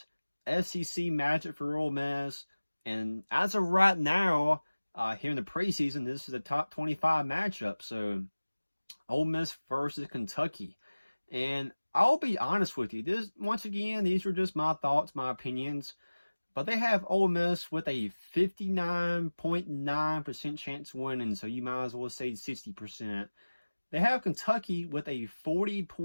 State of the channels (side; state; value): both; inverted; correlation -1.00